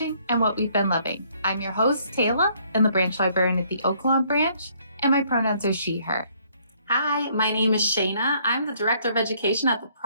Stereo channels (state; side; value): inverted; both; correlation -0.65